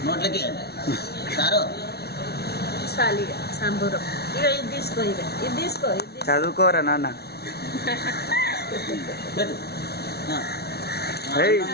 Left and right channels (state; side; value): late; right; 0.47 ms